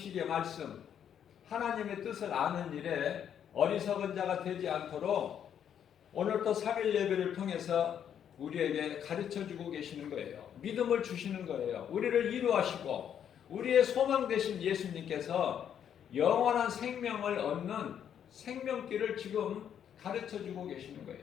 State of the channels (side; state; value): right; quieter; 9.0 dB